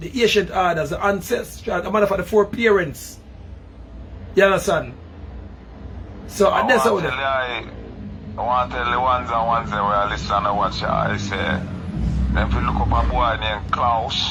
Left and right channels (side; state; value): both; identical; correlation 1.00